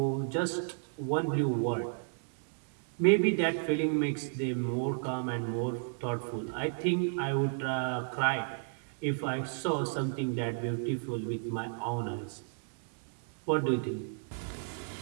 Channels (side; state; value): left; silent; digital silence